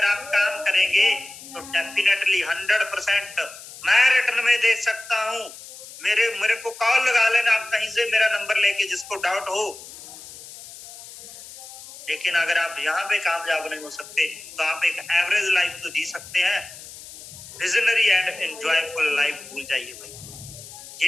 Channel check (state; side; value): noise; left; hiss, 16 dB below the sound